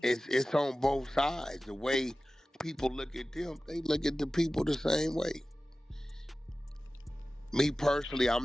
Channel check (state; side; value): normal; both; correlation 0.96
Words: It's on both sides. The way people look at them, they look at the people the same way. Me personally,